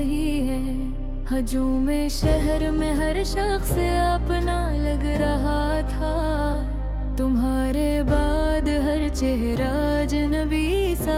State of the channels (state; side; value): identical; both; correlation 1.00